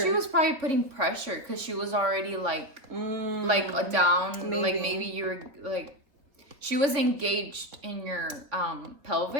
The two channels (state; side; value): late; left; 3.5 ms